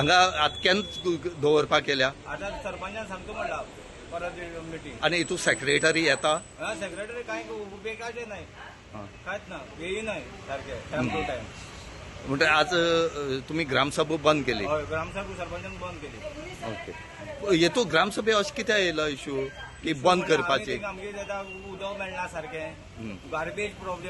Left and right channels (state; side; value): identical; both; correlation 1.00